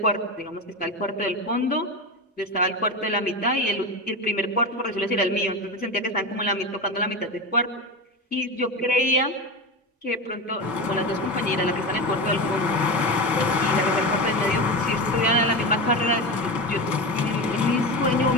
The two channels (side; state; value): both; normal; correlation 0.21